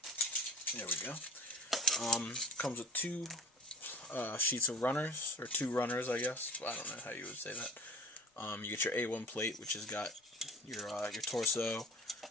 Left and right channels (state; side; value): normal; both; correlation 0.41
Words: There we go. Comes with 2 sheets of runners, or 2 runners, I guess. I don't know how you would say that. You get your A1 plate, which has got your torso,